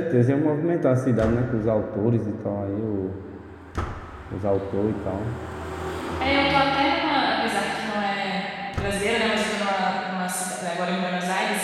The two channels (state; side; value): identical; both; correlation 1.00